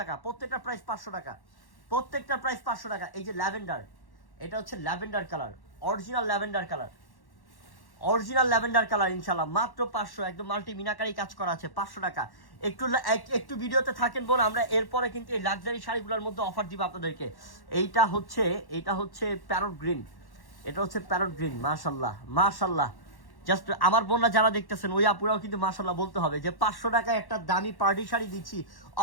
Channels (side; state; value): right; late; 1.1 ms